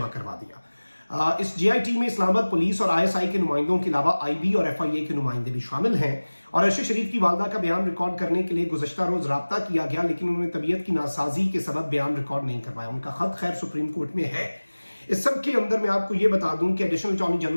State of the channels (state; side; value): inverted; both; correlation -1.00